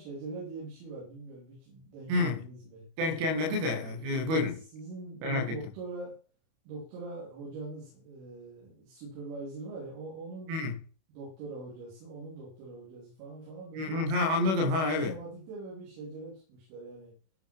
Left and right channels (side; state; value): left; late; 31 ms